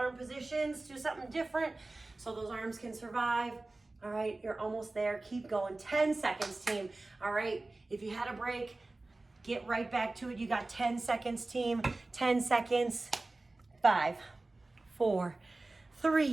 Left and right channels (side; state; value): left; quieter; 3.1 dB